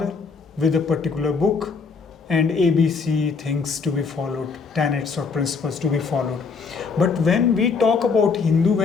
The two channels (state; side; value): quieter; right; 5.1 dB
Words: with a particular book and ABC things to be followed, tenets or principles to be followed. But when we talk about Hindu,